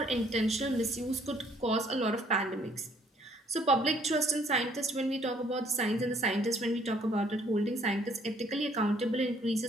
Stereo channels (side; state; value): both; normal; correlation 0.63